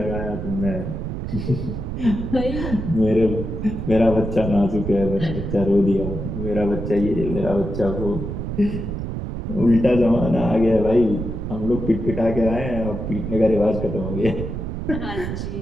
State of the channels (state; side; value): noise; right; rumble, 5 dB below the sound